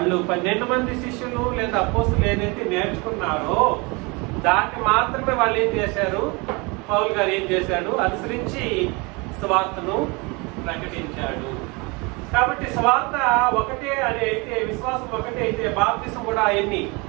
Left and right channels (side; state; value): left; quieter; 27.8 dB